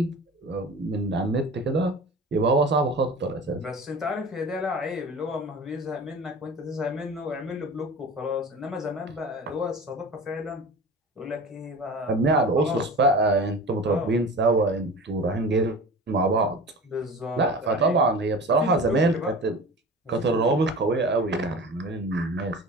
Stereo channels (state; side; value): normal; both; correlation 0.36